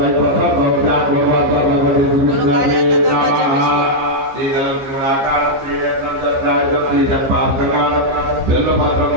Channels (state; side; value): late; left; 15 ms